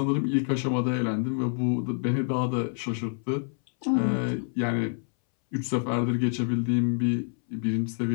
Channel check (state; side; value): silent; right; 60 dB below the other